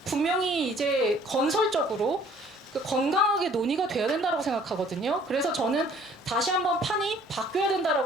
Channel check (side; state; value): both; normal; correlation 0.57